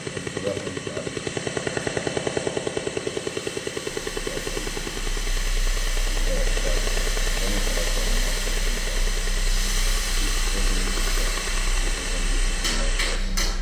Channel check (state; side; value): identical; both; correlation 1.00